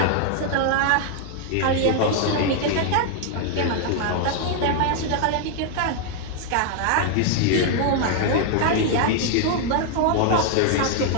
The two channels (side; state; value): both; different; correlation 0.00